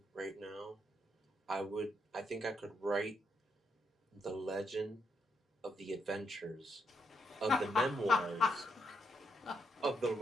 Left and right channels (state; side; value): normal; both; correlation 0.78